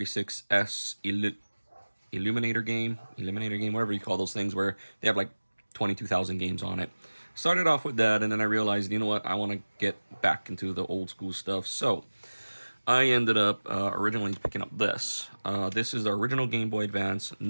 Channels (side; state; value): both; inverted; correlation -1.00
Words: Eliminator game, whatever you call those things, where they have like 22,000 games on it. Started off with that, and then I realized, you know what, I want to get back into the old school stuff. So I ended up originally picking up this. This is the original Game Boy Advance,